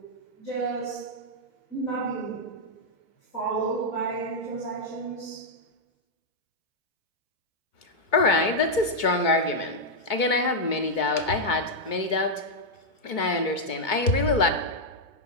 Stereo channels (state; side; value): late; right; 2.2 ms